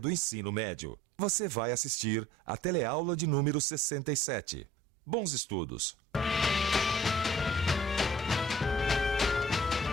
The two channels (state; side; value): normal; both; correlation 0.52